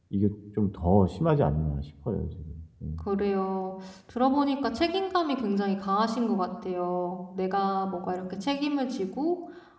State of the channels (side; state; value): both; identical; correlation 1.00